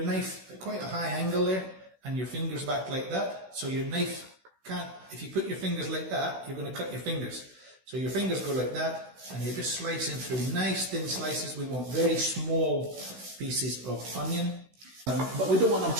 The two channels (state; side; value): late; left; 16 ms